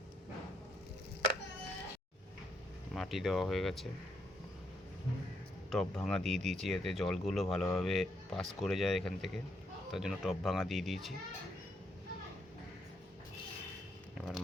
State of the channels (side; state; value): both; normal; correlation 0.75